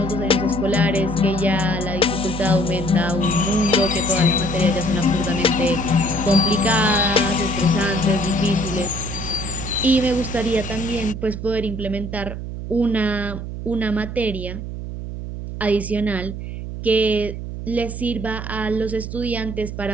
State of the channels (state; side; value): noise; right; hum, 7 dB below the sound